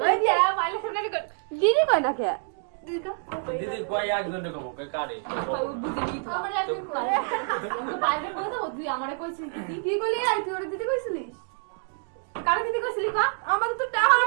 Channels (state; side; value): silent; left; 60 dB below the other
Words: ওই দিয়া মাইলে শুনে কর দিদি কই না কে দিদি ক দিদি কই একজনে কব কই কারে বুঝি কি তো আমারে একদিন কই বাইরে কই তো তুই আমারে কইছিস দিদি কি কইলি? আই তুই ওর দিদি কইছিলিস? কারে দিদি কইছিলি ক? আমাকে তো টাহা